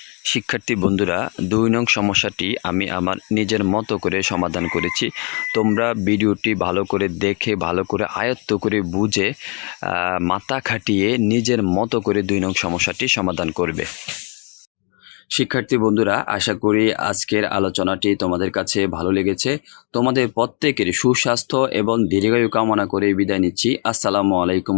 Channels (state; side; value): quieter; right; 33.6 dB